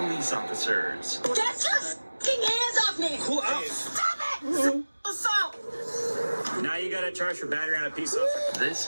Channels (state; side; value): inverted; both; correlation -1.00